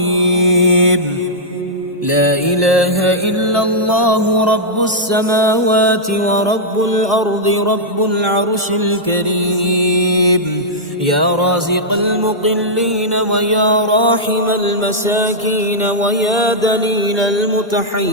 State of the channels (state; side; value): normal; both; correlation -0.09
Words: لا إله إلا الله رب السماوات ورب الأرض رب العرش الكريم. يا رازق المقلين ويا راحم المساكين ويا دليل